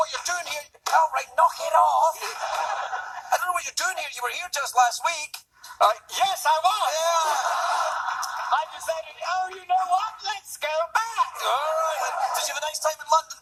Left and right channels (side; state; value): both; identical; correlation 1.00